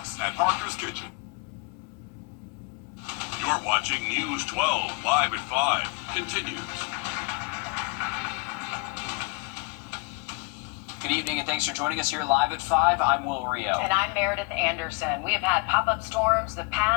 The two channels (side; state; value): right; quieter; 30.5 dB